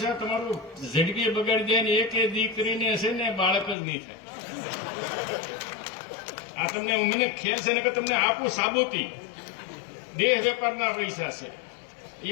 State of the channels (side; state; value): right; drops out; at 3.8 s